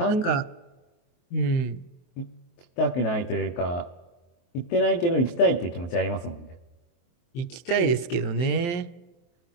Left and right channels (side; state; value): right; late; 23 ms